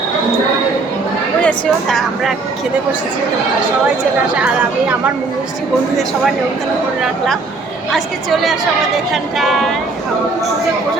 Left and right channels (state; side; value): quieter; left; 3.7 dB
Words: বুঝেছো। তা আমরা খেতে বসেছি, তোমরা সবাই চলে আসে। আর আমি আমার মিষ্টি বন্ধুদের সবাই নিমন্ত্রণ করে রাখলাম। আজকে চলে আসো আমাদের এখানটায়। পুজোর